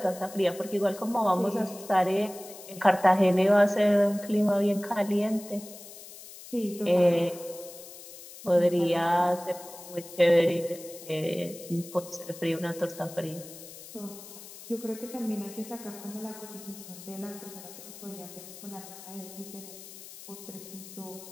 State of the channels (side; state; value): left; noise; hiss, 16 dB below the sound